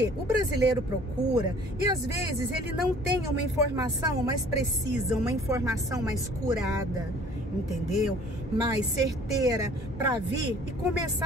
o brasileiro procura e às vezes ele não tem uma informação mais precisa, uma informação mais curada, entendeu? Mais certeira para vir e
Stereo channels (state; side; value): normal; both; correlation 0.53